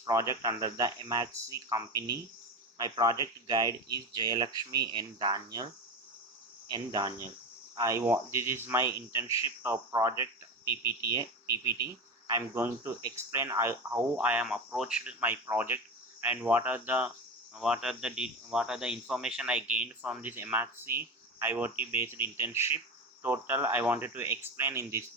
under the Emertxe company. My project guide is Jayalakshmi and Daniel. This is my internship project PPT. I'm going to explain how I am approached my project and what are the information I gained from this MRC IoT based internship. Total I wanted to explain in this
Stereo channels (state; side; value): normal; both; correlation 0.23